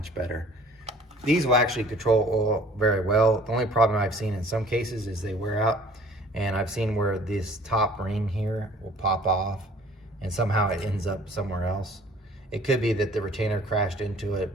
better. These will actually control oil very well. The only problem I've seen in some cases is they wear out, and I've seen where this top ring here will pop off and somehow it ends up somewhere else. It could be that the retainer crashed into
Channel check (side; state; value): both; normal; correlation 0.52